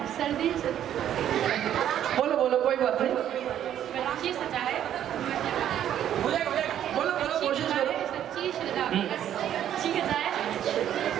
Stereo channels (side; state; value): left; quieter; 10.7 dB